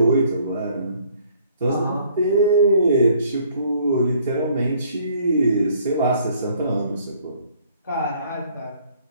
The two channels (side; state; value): both; inverted; correlation -0.61